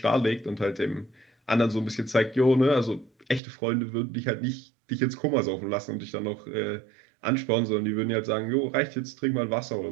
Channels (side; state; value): left; drops out; at 3.4 s